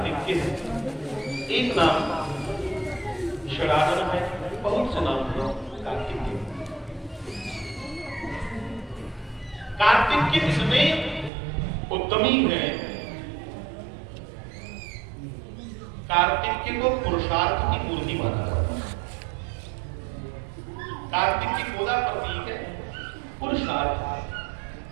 के है, एक नाम शराधन है, बहुत से नाम है कार्तिक के। कार्तिक के इतने उत्तमी है, कार्तिक को पुरुषार्थ की मूर्ति माना जाता है। कार्तिक की गोदा प्रतीक है पुरुषार्थ।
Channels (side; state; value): left; drops out; at 11.3 s